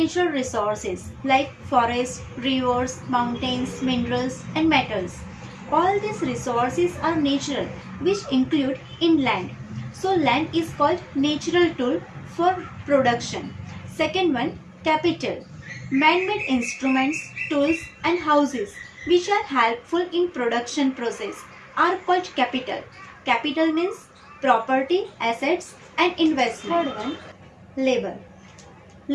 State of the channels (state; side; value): identical; both; correlation 1.00